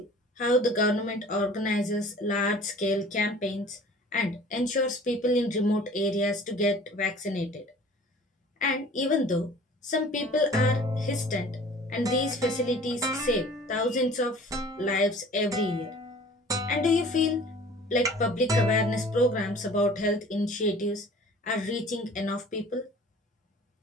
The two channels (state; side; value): normal; both; correlation 0.47